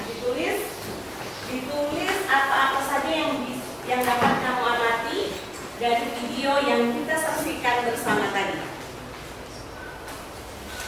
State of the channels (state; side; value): identical; both; correlation 1.00